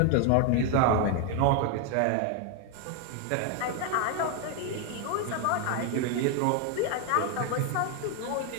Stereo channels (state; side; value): different; both; correlation 0.01